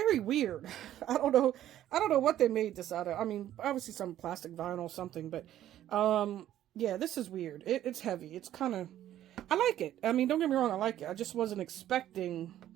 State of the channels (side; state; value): left; quieter; 12.3 dB